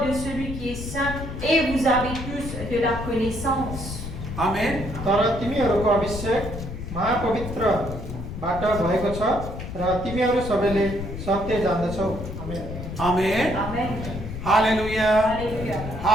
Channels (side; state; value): left; noise; rumble, 8 dB below the sound